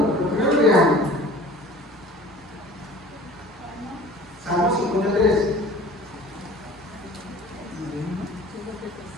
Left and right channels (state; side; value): normal; both; correlation 0.44